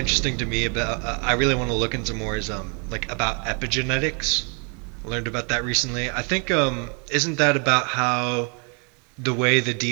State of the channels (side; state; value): left; quieter; 37.1 dB